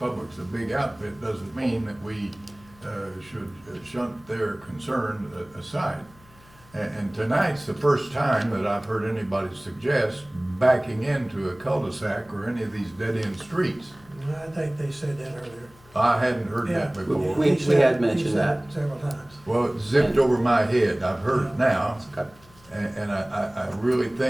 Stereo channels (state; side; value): noise; left; hum, 26 dB below the sound